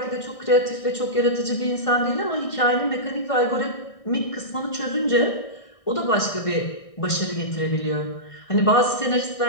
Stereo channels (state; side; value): late; right; 1.6 ms